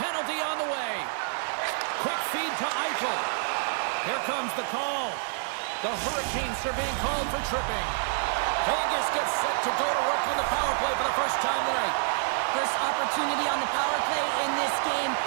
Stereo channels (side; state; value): left; silent; digital silence